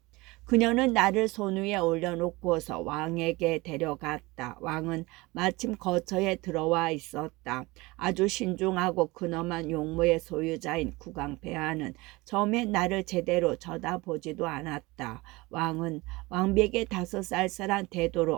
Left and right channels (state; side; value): quieter; left; 22.4 dB